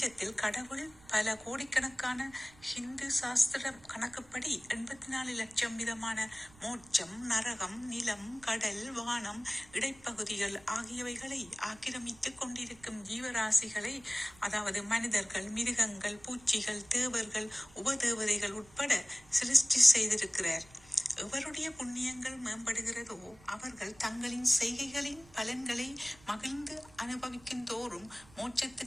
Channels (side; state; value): right; noise; rumble, 24 dB below the sound